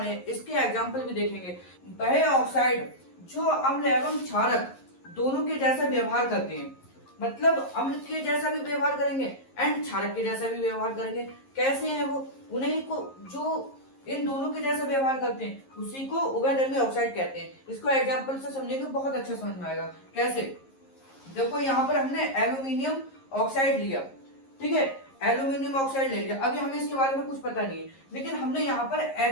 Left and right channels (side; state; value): right; late; 11 ms